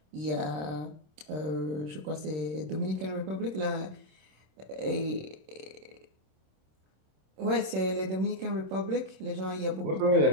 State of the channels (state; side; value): late; left; 26 ms